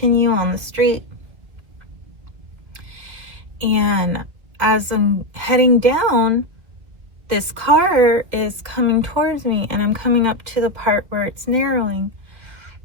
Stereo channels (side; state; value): left; late; 2.3 ms